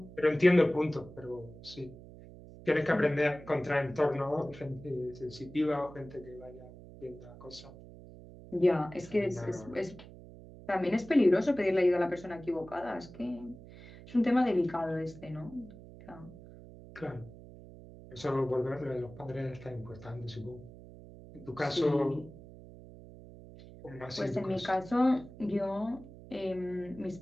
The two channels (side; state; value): right; noise; hum, 17 dB below the sound